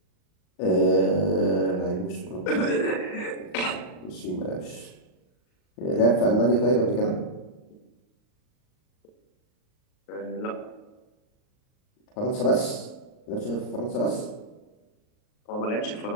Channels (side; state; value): right; late; 38 ms